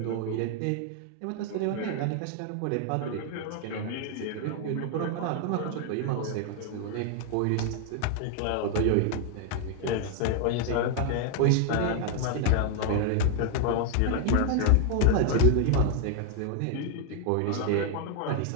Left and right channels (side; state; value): both; different; correlation 0.00